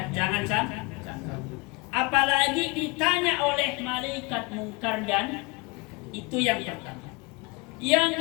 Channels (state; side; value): quieter; right; 26.8 dB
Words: jangan sampai. Apalagi ditanya oleh malaikat mungkar dan itu yang pertama. Yang